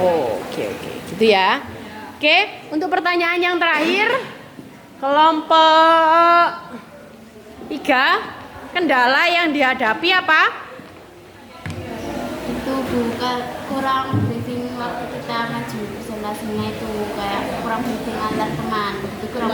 gitu ya. Oke, untuk pertanyaan yang terakhir, kelompok 3, kendala yang dihadapi apa? Itu bukan kurang briefing waktu kita maju presentasinya, itu kayak kurang briefing antar teman, itu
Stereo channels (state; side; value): identical; both; correlation 1.00